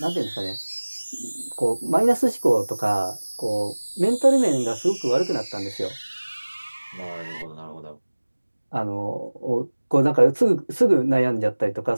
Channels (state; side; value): inverted; both; correlation -1.00